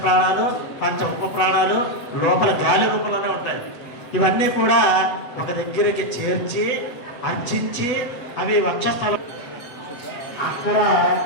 పంచ ఉప ప్రాణాలు లోపల గాలి రూపంలోనే ఉంటాయి. ఇవన్నీ కూడా ఒక దగ్గరికి చేర్చి అర్చించి అవి వక్షస్థలం అక్కడ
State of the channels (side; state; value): right; late; 8.0 ms